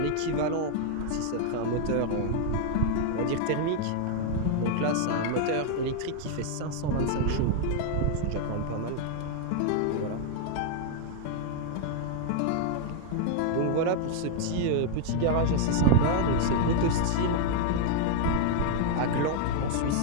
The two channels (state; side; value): different; both; correlation 0.00